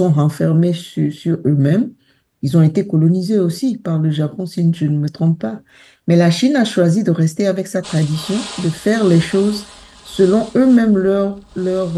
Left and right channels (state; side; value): identical; both; correlation 1.00